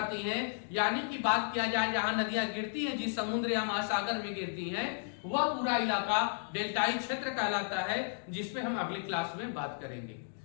हैं, यानी कि बात किया जाए जहां नदियां गिरती हैं, जिस समुद्र या महासागर में गिरती हैं, वह पूरा इलाका डेल्टाई क्षेत्र कहलाता है, जिसपे हम अगली क्लास में बात करेंगे।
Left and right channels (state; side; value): silent; right; digital silence